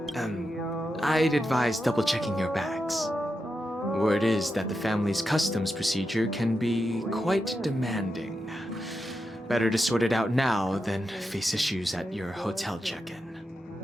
I'd advise double-checking your bags. Word is that the family's customs procedure can be quite demanding. Better to sort it out now than face issues at your hotel check-in.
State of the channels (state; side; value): normal; both; correlation 0.88